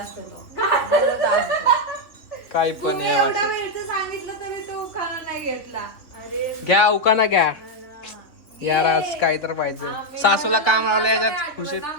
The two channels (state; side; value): late; right; 3.6 ms